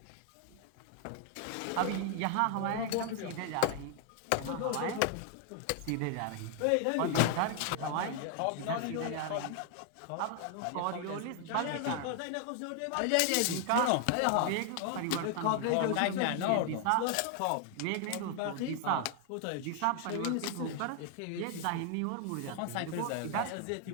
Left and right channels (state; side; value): different; both; correlation 0.00